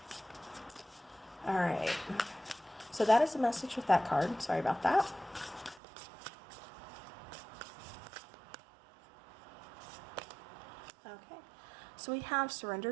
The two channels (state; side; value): drops out; left; at 5.8 s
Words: All right. So that is the message with that card. Sorry about that. Okay. So we have